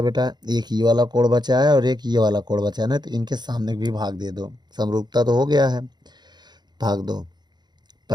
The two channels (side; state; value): left; late; 0.21 ms